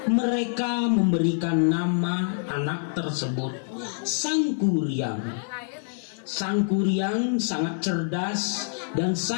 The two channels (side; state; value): right; silent; digital silence